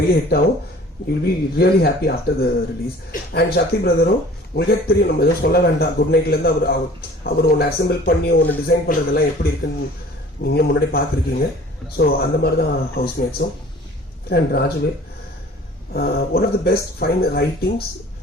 ஹிட் ஆகும். You will be really happy after the release. And Sakthi பிரதரும் உங்களுக்கே தெரியும், நம்ம எதுவும் சொல்ல வேண்டாம். குட் நைட்லேருந்து அவர் ஒன்று அசெம்பிள் பண்ணி ஒன்று டிசைன் பண்ணுறதெல்லாம் எப்படி இருக்குன்னு நீங்கள் முன்னாடி பார்த்துருக்கீங்க. ஸோ அந்த மாதிரி தான் ஹவுஸ்மேட்ஸும். அண்ட் ராஜுவே one of the best fine writings.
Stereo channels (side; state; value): both; normal; correlation 0.48